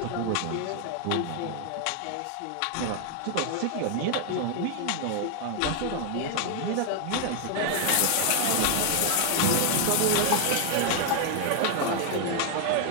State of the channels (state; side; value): different; both; correlation 0.00